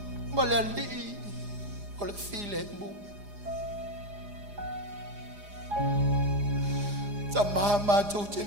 ma le alii o le file mu. Ta maha mātou te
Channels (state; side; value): late; left; 4.9 ms